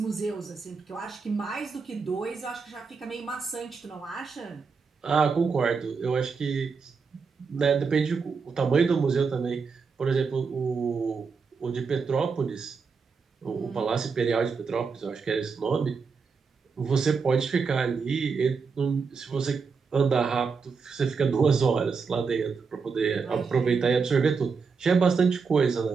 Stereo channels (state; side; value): quieter; left; 5.2 dB